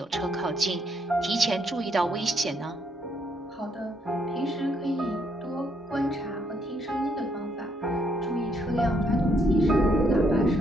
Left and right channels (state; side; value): normal; both; correlation 0.73